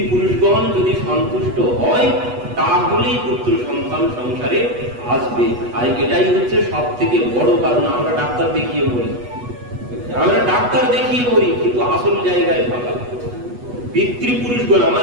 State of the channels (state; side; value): late; left; 8.2 ms